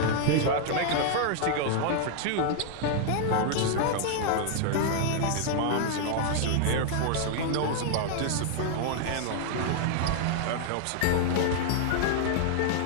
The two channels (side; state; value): both; different; correlation 0.00